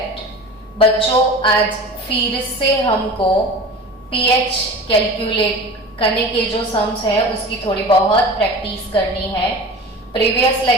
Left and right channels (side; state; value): both; normal; correlation 0.36